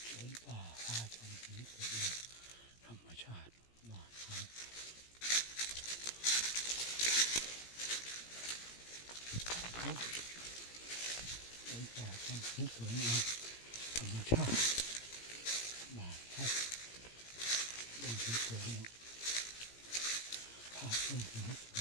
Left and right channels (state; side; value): late; right; 17 ms